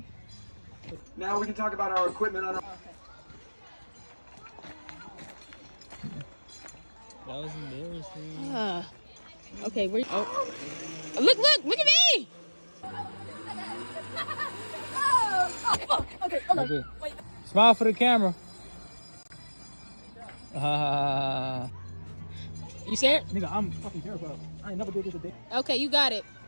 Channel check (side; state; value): both; inverted; correlation -1.00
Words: Now we can talk about our equipment on our... That was embarrassing. Okay, where? Oh, look at me! Okay, hold on. Wait. Smile for the camera. You scared? Nigga, I'm fucking terrified. I ain't never did this a day. Okay, you got it.